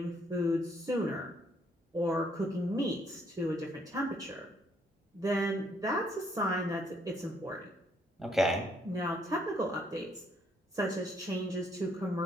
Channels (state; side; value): normal; both; correlation 0.69